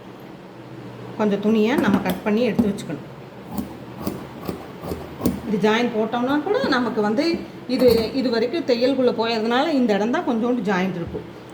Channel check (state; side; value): identical; both; correlation 1.00